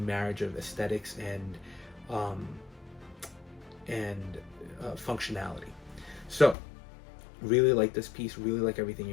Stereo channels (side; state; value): right; drops out; at 6.6 s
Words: marriage of aesthetics and functionality. So really like this piece, really like everything